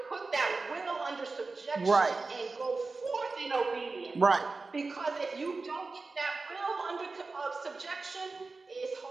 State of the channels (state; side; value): quieter; left; 3.8 dB